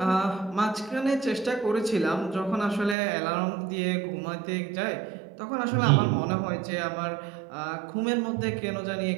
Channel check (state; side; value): drops out; left; at 3.0 s